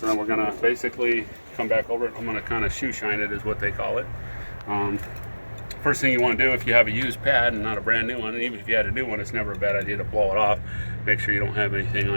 then we're gonna basically come back over it. I'm gonna kind of shoe shine it, is what they call it. First thing you want to do if you have a used pad and not a brand new one, and even if you had a new one, it's never a bad idea to blow it off. Make sure you don't have anything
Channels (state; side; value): inverted; both; correlation -1.00